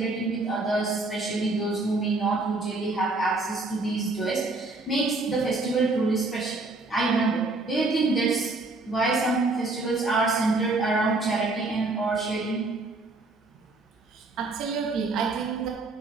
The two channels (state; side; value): quieter; left; 3.2 dB